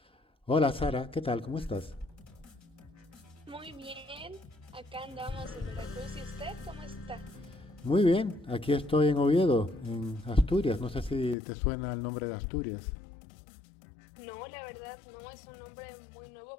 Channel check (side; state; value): right; drops out; at 11.4 s